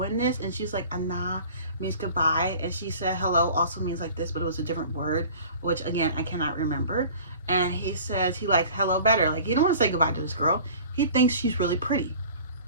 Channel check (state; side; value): inverted; both; correlation -0.44